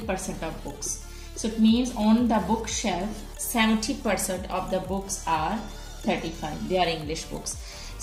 of books. So it means on the bookshelf 70% of the books are 35. They are English books.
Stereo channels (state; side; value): identical; both; correlation 1.00